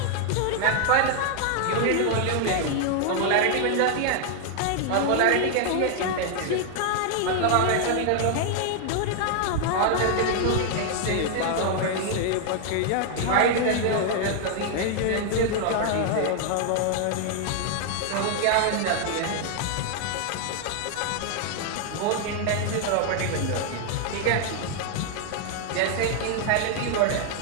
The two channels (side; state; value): both; different; correlation 0.00